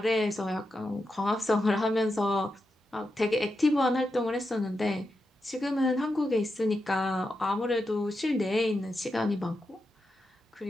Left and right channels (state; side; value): normal; both; correlation 0.87